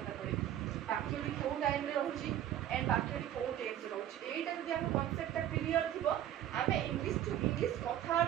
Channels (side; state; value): left; quieter; 11.6 dB